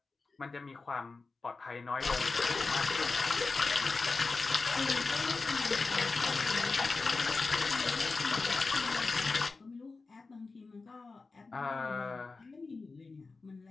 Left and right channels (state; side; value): quieter; right; 4.0 dB